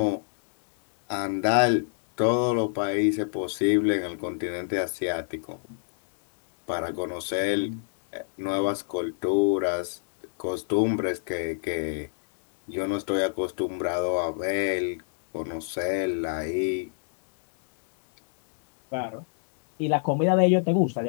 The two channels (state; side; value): silent; right; digital silence